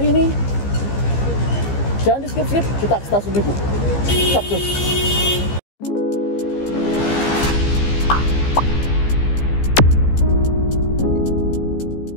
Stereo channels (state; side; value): late; right; 15 ms